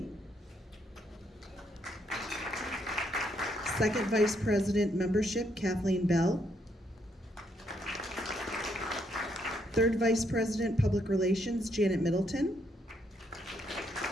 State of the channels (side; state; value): both; normal; correlation 0.74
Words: Second Vice President Membership, Kathleen Bell. Third Vice President Public Relations, Janet Middleton.